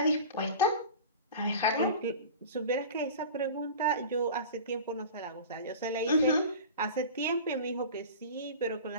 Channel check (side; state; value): both; inverted; correlation -0.36